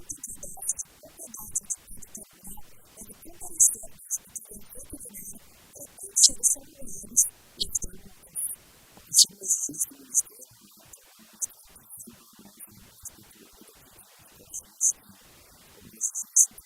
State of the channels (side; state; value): both; identical; correlation 1.00